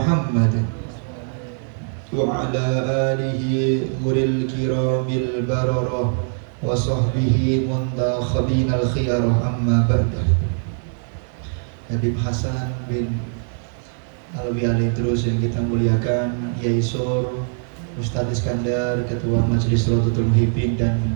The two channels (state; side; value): silent; left; 64 dB below the other